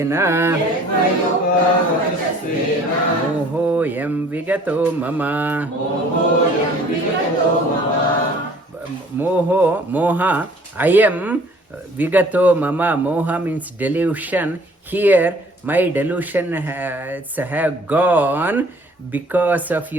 Mohoyam Vigato Mama Moha I am Vigato Mama. Moha means delusion. Here my delusion have gone because of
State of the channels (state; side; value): normal; both; correlation 0.54